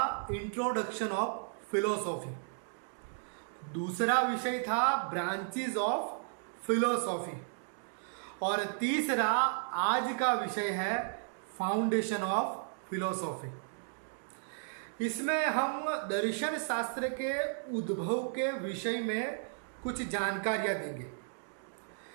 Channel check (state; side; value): silent; left; digital silence